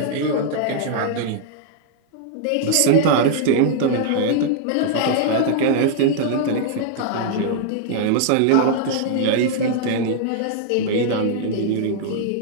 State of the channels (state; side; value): different; both; correlation -0.01